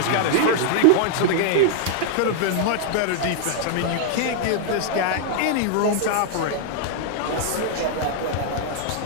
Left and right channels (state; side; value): different; both; correlation -0.01